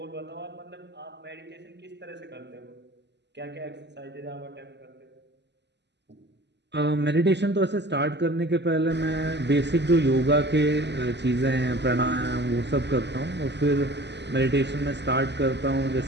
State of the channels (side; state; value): left; late; 0.50 ms